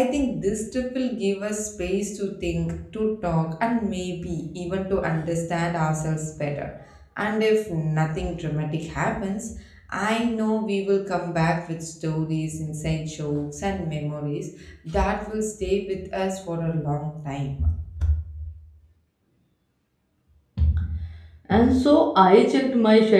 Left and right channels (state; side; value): identical; both; correlation 1.00